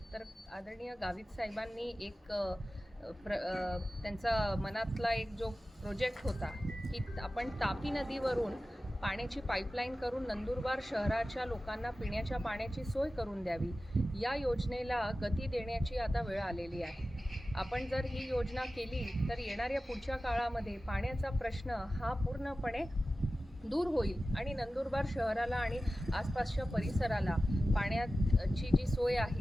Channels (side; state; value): both; normal; correlation 0.95